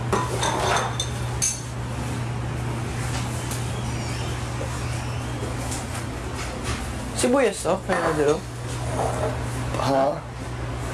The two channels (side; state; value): both; identical; correlation 1.00